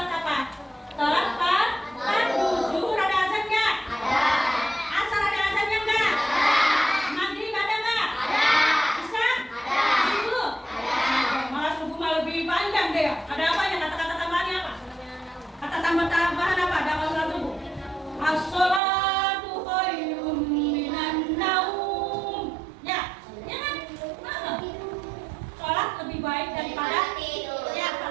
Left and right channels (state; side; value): drops out; left; at 18.8 s